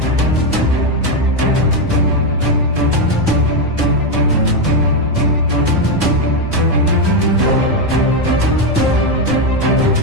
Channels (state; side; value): normal; both; correlation 0.06